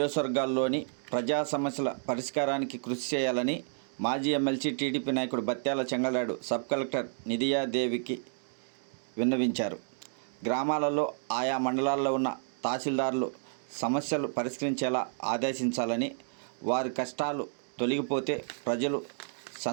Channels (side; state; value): left; silent; digital silence